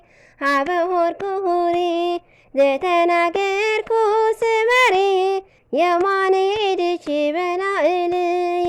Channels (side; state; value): both; identical; correlation 1.00